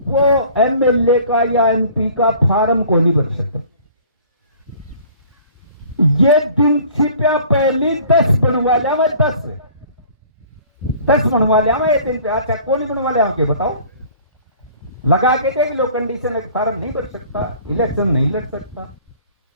वो एमएलए का या एमपी का फार्म को नहीं भर सकता। ये दिन छिपया पहली 10 बनवा लिया मैं 10 बनवा लिया मैं ये दिन पे अच्छा कौन बनवा लिया के बताओ लगा के देख लो कंडीशन फार्म नहीं भर सकता इलेक्शन नहीं लड़ सकता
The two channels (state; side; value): inverted; both; correlation -0.50